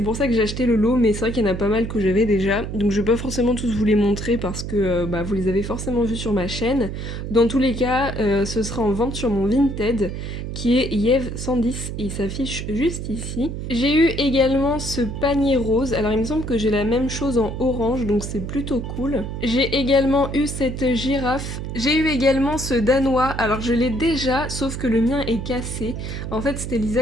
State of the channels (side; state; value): right; noise; hum, 6 dB below the sound